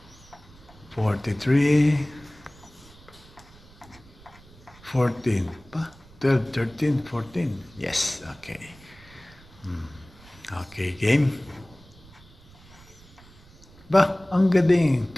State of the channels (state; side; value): noise; right; rumble, 24 dB below the sound